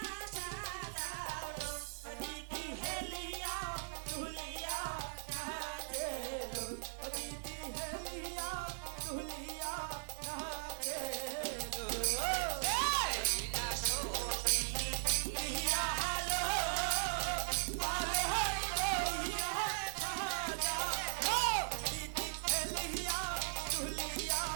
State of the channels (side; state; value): left; silent; digital silence